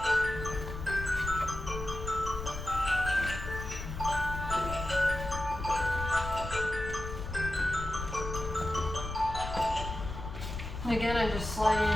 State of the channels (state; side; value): noise; left; rumble, 7 dB below the sound